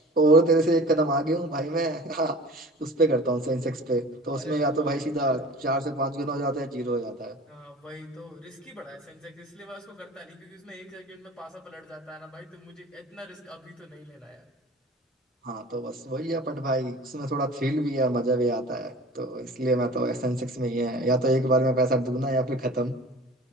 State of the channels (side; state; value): both; normal; correlation 0.41